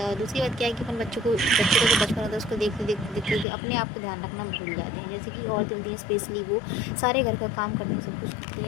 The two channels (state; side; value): drops out; right; at 3.5 s